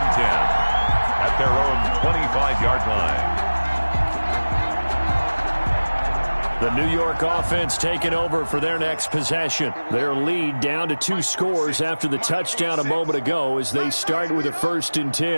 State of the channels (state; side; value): inverted; both; correlation -1.00